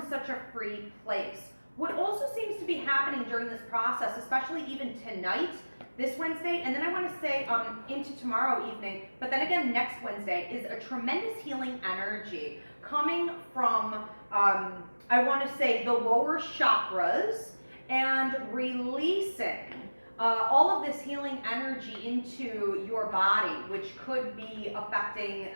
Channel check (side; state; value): both; inverted; correlation -1.00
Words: such a free place. What also seems to be happening during this process, especially even tonight, this Wednesday, and then I want to say into tomorrow evening, but then again next Wednesday, is a tremendous healing energy coming from, I want to say, the lower chakras and releasing all of this healing energy into your body, which could be affecting